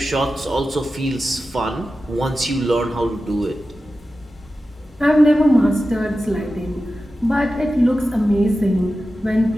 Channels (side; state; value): both; normal; correlation 0.93